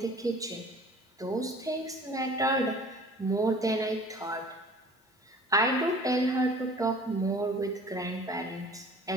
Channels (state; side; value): normal; both; correlation 0.47